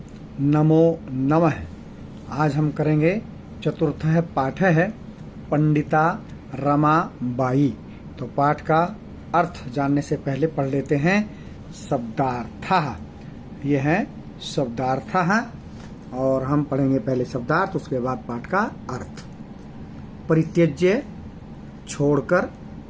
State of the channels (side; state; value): both; identical; correlation 1.00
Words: नमो नमः। आज हम करेंगे चतुर्थ पाठ है पंडिता रमाबाई। तो पाठ का अर्थ जानने से पहले पढ़ लेते हैं शब्दार्थ। ये है शब्दार्थ और हम पढ़ेंगे पहले शब्दार्थ, उसके बाद पाठ का अर्थ। परित्यज्य छोड़कर,